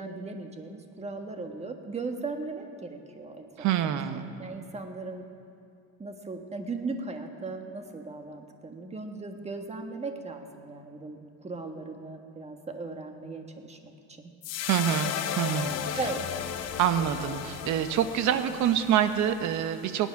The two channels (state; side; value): quieter; left; 5.6 dB